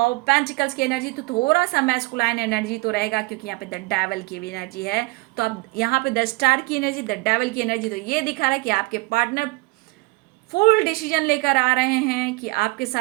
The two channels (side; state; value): left; quieter; 24.6 dB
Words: पेंटिकल्स की एनर्जी, तो थोड़ा सा मैस्कुलाइन एनर्जी तो रहेगा, क्योंकि यहाँ पे द डेविल की भी एनर्जी है। तो अब यहाँ पे द स्टार की एनर्जी, द डेविल की एनर्जी, तो ये दिखा रहा है कि आपके पार्टनर फुल डिसीजन लेकर आ रहे हैं कि आपके